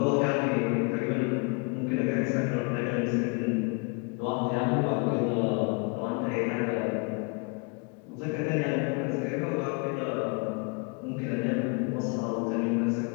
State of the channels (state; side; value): quieter; right; 33.0 dB